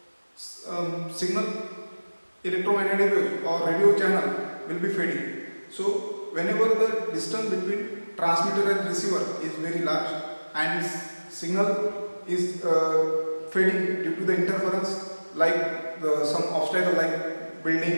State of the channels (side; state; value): both; inverted; correlation -1.00